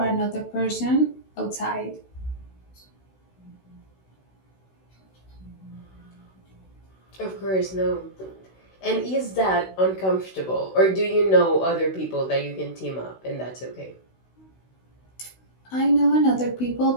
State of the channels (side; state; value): right; late; 16 ms